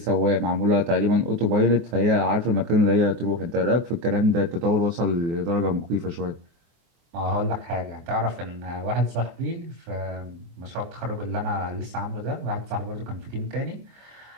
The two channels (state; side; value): late; left; 24 ms